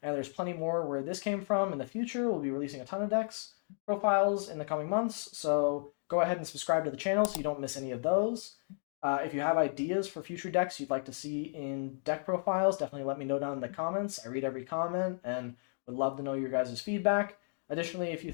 and there's plenty more where this came from in the future. We'll be releasing a ton of decks profiles in the coming months, so go ahead and subscribe to the channel so you don't miss any of those. If you have ideas for future decks you'd like to see in deck profiles, definitely let me know down in the comments. I read every comment and would love to know your guys' feedback. Additionally, if you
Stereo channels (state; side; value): silent; right; digital silence